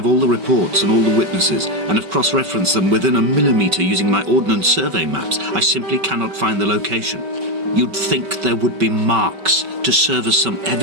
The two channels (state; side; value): late; left; 5.2 ms